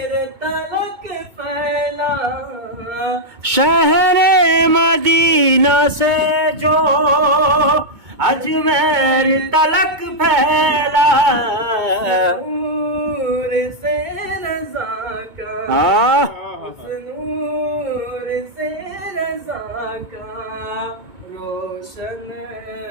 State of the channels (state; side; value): late; left; 2.2 ms